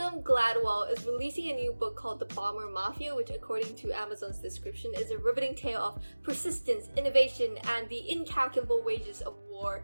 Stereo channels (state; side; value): inverted; both; correlation -1.00